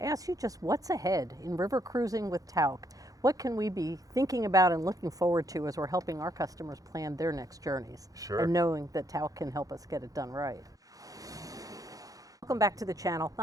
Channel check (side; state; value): left; late; 0.17 ms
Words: ask you just what's ahead in river cruising with Tauck? What can we be thinking about and looking forward to as we're helping our customers plan their next journeys? Sure. And knowing that Tauck can help us get it done right. Welcome back to the channel.